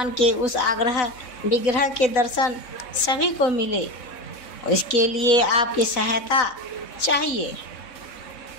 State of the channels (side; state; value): right; late; 4.0 ms